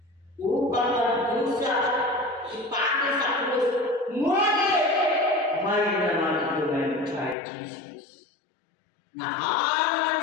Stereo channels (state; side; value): drops out; right; at 7.4 s